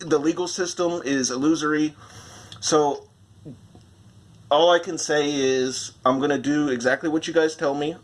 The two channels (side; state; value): both; identical; correlation 1.00